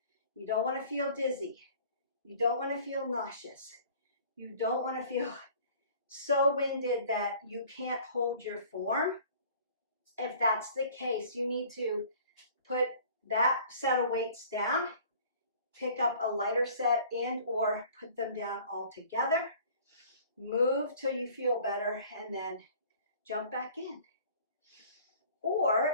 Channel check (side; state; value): both; inverted; correlation -0.50